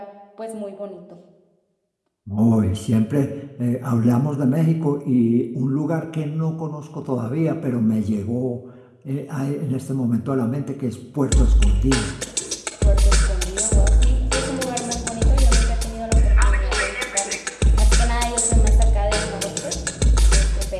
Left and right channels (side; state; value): both; identical; correlation 1.00